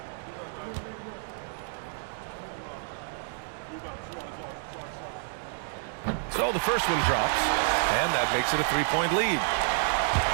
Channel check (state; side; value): silent; left; digital silence